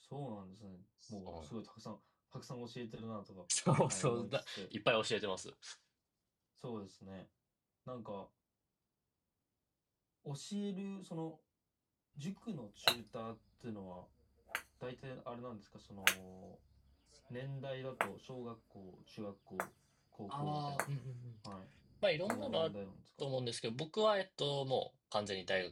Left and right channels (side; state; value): both; identical; correlation 1.00